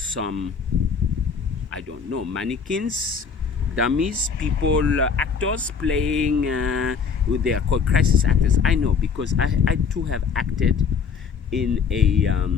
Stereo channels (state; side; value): quieter; right; 5.9 dB